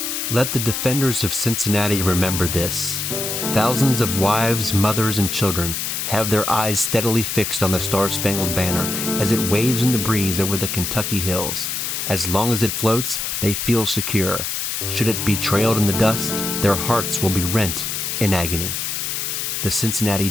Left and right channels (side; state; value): left; noise; hiss, 2 dB below the sound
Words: Let the defenders of Cincinnati remember this. Thousands of wives, mothers, and children have their eyes steadily fixed on the Star-Spangled Banner as it waves in the breeze over the Kentucky hills. As long as it floats, they feel secure. Should it be trailed in the dust, their hearts will be rent in agony. The Cincinnati